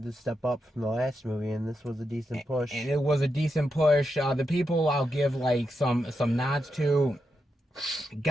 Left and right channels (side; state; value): both; normal; correlation 0.85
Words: to step up from the last movie, and this was a decent push. And it was a decent push. The people I'll give like some nods to.